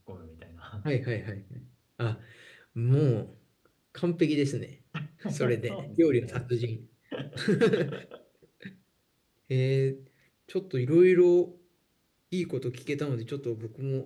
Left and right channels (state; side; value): identical; both; correlation 1.00